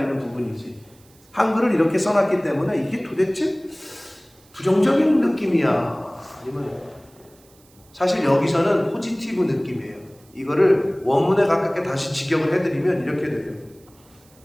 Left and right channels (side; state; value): right; noise; hiss, 29 dB below the sound